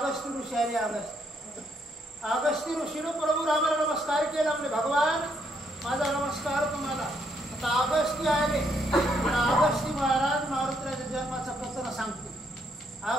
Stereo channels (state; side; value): normal; both; correlation 0.73